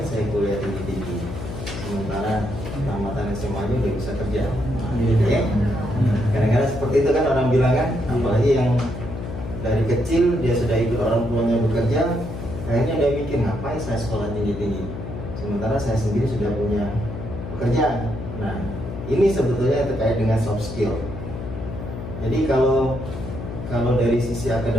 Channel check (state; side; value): noise; left; hum, 8 dB below the sound